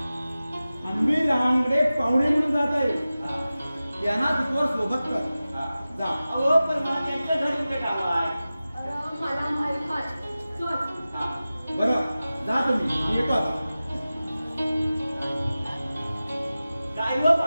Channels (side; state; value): both; inverted; correlation -0.95